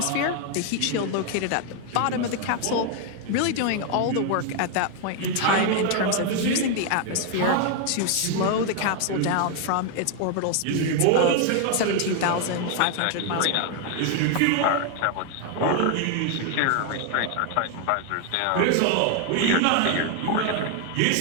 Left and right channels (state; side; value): different; both; correlation 0.00